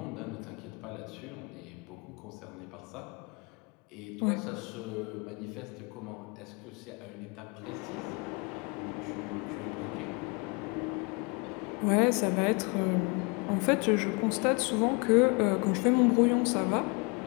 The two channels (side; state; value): right; quieter; 31.2 dB